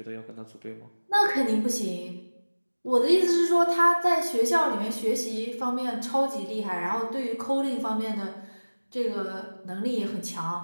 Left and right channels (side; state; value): both; inverted; correlation -1.00